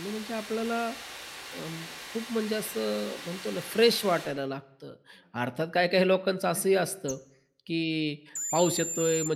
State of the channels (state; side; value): identical; both; correlation 1.00